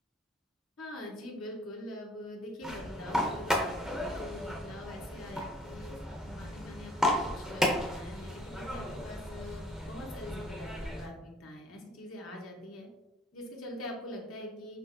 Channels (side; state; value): both; normal; correlation 0.57